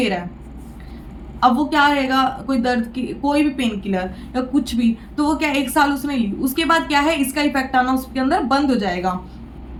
रहा है। अब वो क्या रहेगा, कोई दर्द की कोई भी पेन किलर या कुछ भी, तो वो क्या 1 साल उसने ली, उसके बाद क्या है, इसका इफेक्ट आना उसके अंदर बंद हो जाएगा।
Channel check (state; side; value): identical; both; correlation 1.00